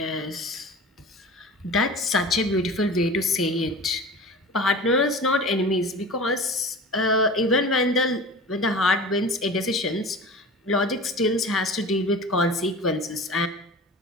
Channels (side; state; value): both; normal; correlation 0.35